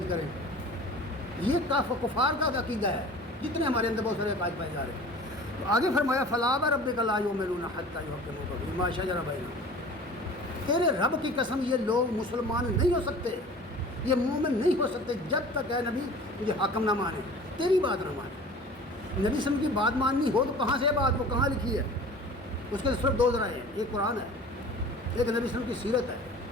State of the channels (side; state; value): both; normal; correlation 0.42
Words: کریں. یہ کفار کا عقیدہ ہے، جتنے ہمارے اندر بہت سارے عقائد پائے جا رہے ہیں. تو آگے فرمایا فلا وربک لا یؤمنون حتی یحکموک فیما شجر بینہم. تیرے رب کی قسم یہ لوگ مسلمان نہیں ہو سکتے، یہ مومن نہیں ہو سکتے جب تک اے نبی تجھے حاکم نہ مانے، تیری بات نہ مانے. نبی صلی اللہ علیہ وسلم کی بات ماننی ہو تو کہاں سے بات، وہ کہاں لکھی ہے؟ اس کے صرف 2 ذرائع ہیں، ایک قرآن ہے، ایک نبی صلی اللہ علیہ وسلم کی سیرت ہے،